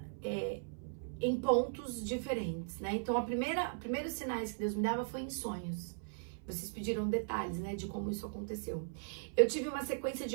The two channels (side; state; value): left; silent; 52 dB below the other